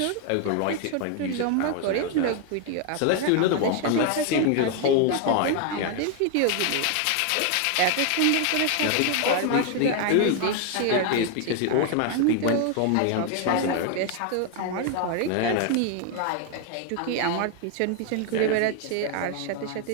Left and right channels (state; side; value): different; both; correlation 0.01